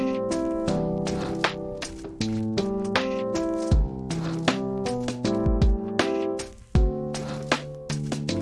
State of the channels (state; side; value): identical; both; correlation 1.00